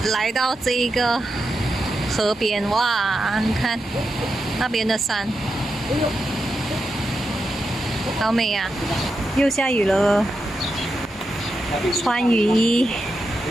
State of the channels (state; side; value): normal; both; correlation 0.87